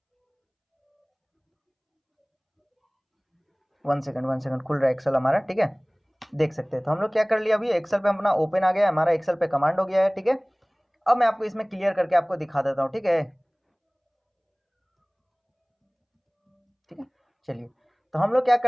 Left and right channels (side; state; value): both; identical; correlation 1.00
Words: वन सेकंड खुल रहा है एक्सेल हमारा, ठीक है, देख सकते हैं। तो हम लोग क्या कर लिया, अभी एक्सेल पे अपना ओपन आ गया, हमारा एक्सेल पे कमांड हो गया है, ठीक है। अब मैं आपको इसमें क्लियर करके आपको दिखा देता हूँ, ठीक है, ठीक है। चलिए, तो हम लोग क्या